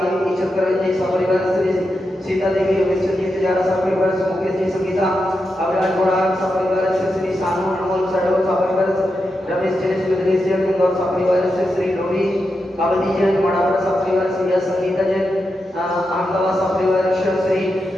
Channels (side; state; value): both; normal; correlation 0.87